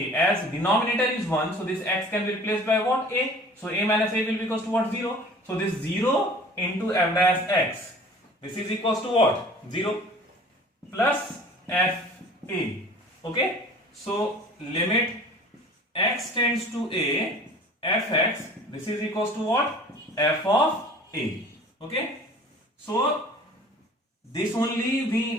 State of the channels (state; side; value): normal; both; correlation 0.46